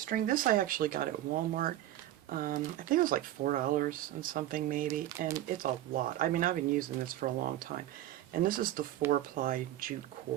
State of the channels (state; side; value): quieter; left; 13.6 dB